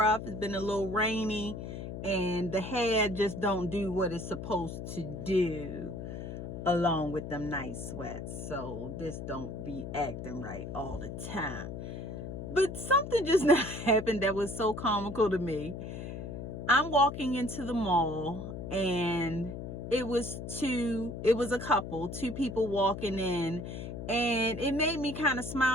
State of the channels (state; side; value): noise; left; hum, 7 dB below the sound